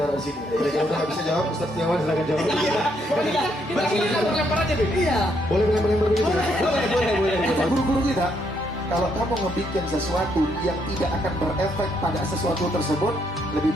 di sini. Kalau udah nggak bisa jawab, Ustaz Setiawan silakan jawab. Kita lempar aja Bib. Iya. Boleh lempar begitu ya? Boleh. Kata guru-guru kita, kalau kamu ngebikin sesuatu yang tidak akan berefek pada sesuatu tersebut, lebih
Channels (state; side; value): normal; both; correlation 0.74